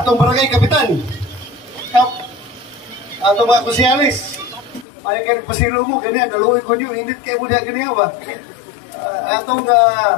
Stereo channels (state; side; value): drops out; right; at 4.9 s